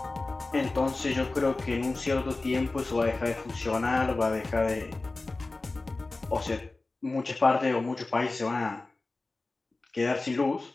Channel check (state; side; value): quieter; right; 3.3 dB